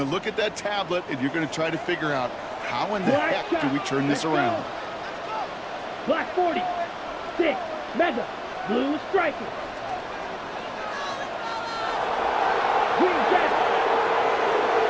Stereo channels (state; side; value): identical; both; correlation 1.00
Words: to look at that tablet, and you're going to try to figure out how in the heck do we turn this around? Black 40. 6, mega, blue striker. Green jet.